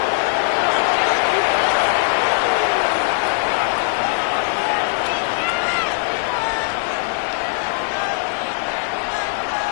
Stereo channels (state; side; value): silent; right; 58 dB below the other